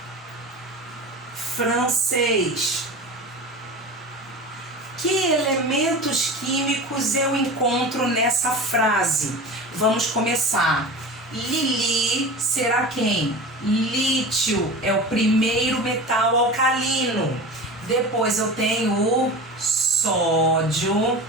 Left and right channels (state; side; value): normal; both; correlation 0.32